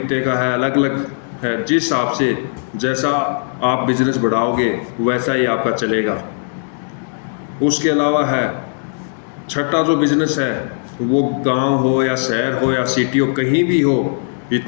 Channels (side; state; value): right; silent; digital silence